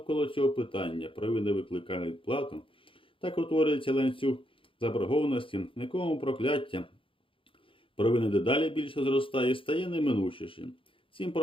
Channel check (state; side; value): late; right; 0.25 ms